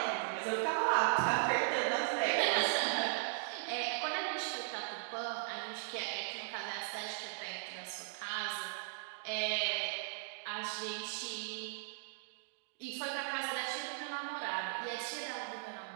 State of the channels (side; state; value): left; silent; digital silence